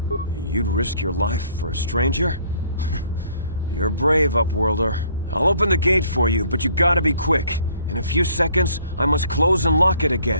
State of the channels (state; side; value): inverted; both; correlation -0.59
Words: You'd risk your life for a stranger? You're brave, Upworlder. I'll open the gate for you, but you gotta be quick. In a few seconds, I must close and lock it